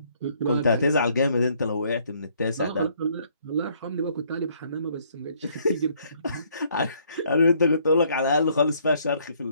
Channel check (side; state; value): both; inverted; correlation -0.66